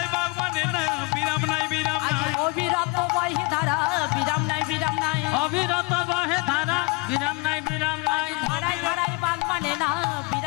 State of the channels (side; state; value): right; quieter; 27.5 dB